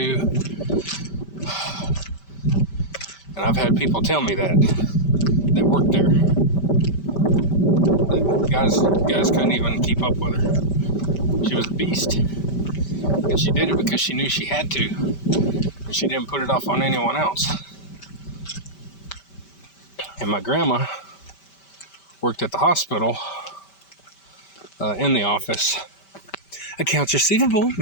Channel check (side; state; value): right; late; 5.1 ms